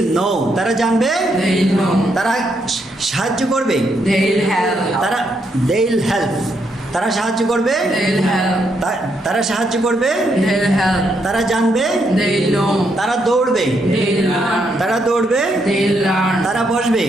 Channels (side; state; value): both; normal; correlation 0.77